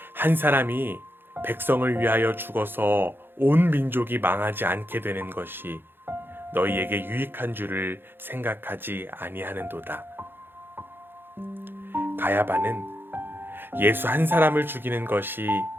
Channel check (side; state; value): left; late; 0.10 ms